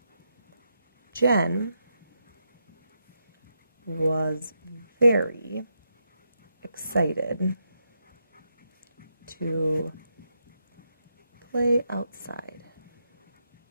Jen was very excited to play outside.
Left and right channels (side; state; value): both; inverted; correlation -0.83